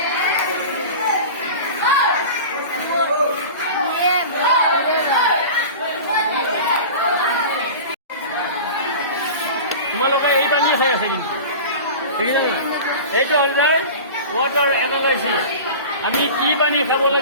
তোমালোকে এই পানী খাই আছে কিন্তু দেখিছা নাই? এইটো হ'ল যায় ৱাটাৰ এনালাইচিছ। আমি কি পানী খাব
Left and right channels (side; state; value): both; inverted; correlation -0.34